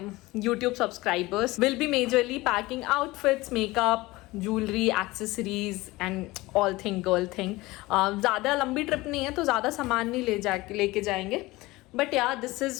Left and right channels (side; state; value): right; quieter; 20.3 dB